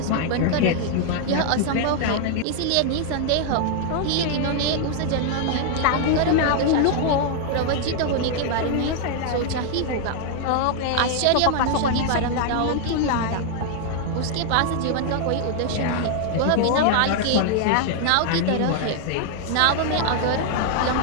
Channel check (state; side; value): different; both; correlation 0.00